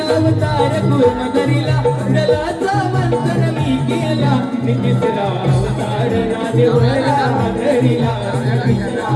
अवतार कुर्म धरिला जलाचा मंथन मी केला तिसरा अवतार राधे वरा धरिला तिसरा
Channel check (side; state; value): both; identical; correlation 1.00